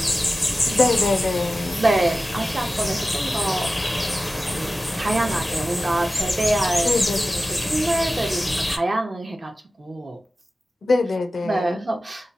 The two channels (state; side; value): normal; both; correlation 0.95